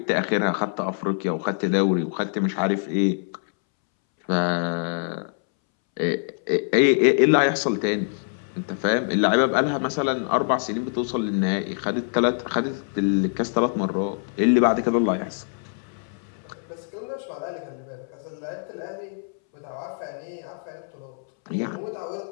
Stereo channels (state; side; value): silent; right; 62 dB below the other